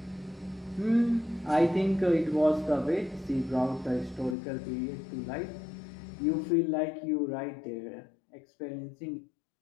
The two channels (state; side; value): drops out; right; at 4.4 s